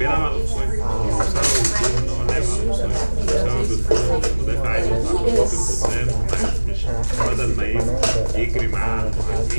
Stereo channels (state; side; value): inverted; both; correlation -1.00